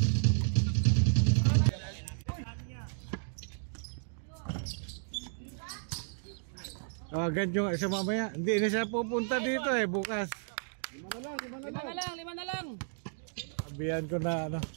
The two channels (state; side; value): silent; left; digital silence